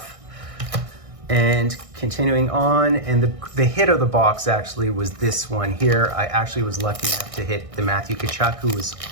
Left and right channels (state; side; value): late; left; 1.6 ms